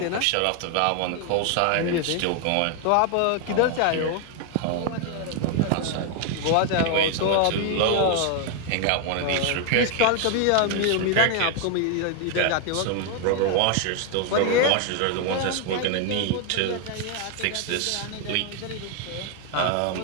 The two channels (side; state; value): both; different; correlation 0.01